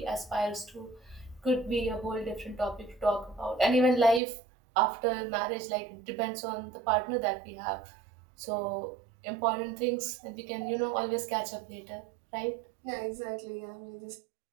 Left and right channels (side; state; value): left; drops out; at 4.2 s